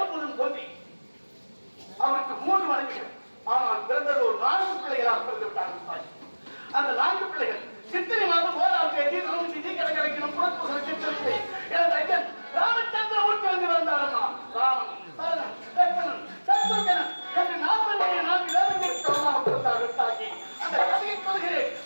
தோன்றி அவருக்கு 3 மனைவிகள். ஆனால் பிறந்தது ஒரு 4 பிள்ளைகளாக பிறந்து விட்டார்கள். அந்த 4 பிள்ளைகள் சித்திரை மாதம் 1ஆம் தேதி நவமி கிடைக்கணும் புறப்பு சித்திரை எனது ஐயன் ராமச்சந்திரமூர்த்தி வந்து வந்தாரம்மா. ராமன் சரணன் லட்சணன் சத்ருகனன் என்று 4 வேதங்களுக்கு பிறந்தார்கள். தாக்கி அந்த கதையை சொல்கிறேன்.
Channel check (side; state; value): both; inverted; correlation -1.00